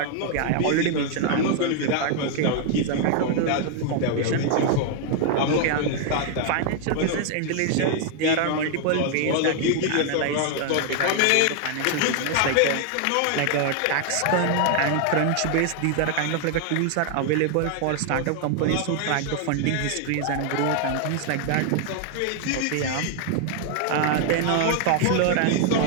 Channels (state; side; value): different; both; correlation 0.00